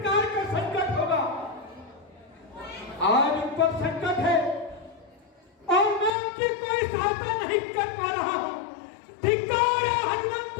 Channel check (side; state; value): right; drops out; at 6.1 s